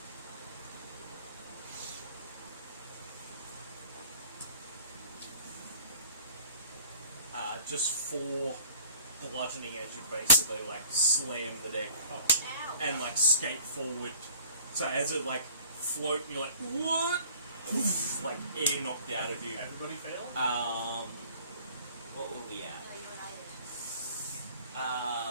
just 4 bludgeoning as you basically like slam the deck Ow. and like skate forward. So as it like float, you're like what? Like air knocked out of you. Everybody fail? What were we at? No, you and I did.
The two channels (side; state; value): both; inverted; correlation -0.48